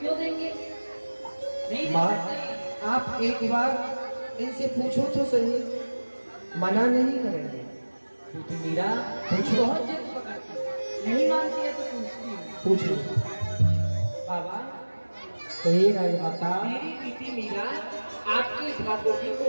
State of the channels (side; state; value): both; inverted; correlation -1.00